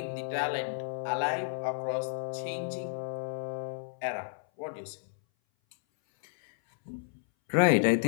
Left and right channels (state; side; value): silent; right; 57 dB below the other